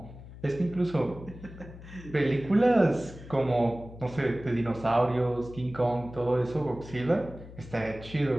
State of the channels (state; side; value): noise; left; hum, 16 dB below the sound